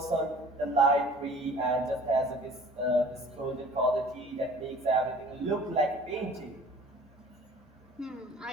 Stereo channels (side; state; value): both; normal; correlation 0.48